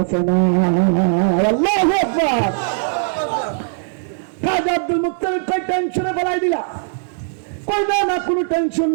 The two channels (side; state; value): left; silent; digital silence